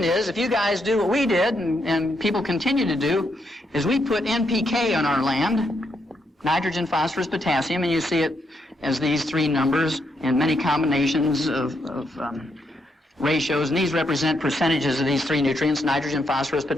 is, if you guys do what we did, and people continue to do, is we put NPK on our land, nitrogen, phosphorus, potassium, and you see it as these three numbers in many combinations of ratios, and these represent percentages of these three nutrients, nitrogen, phosphorus,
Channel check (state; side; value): normal; both; correlation 0.78